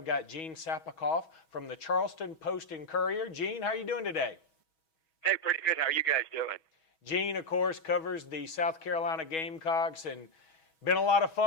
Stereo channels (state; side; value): late; right; 6.2 ms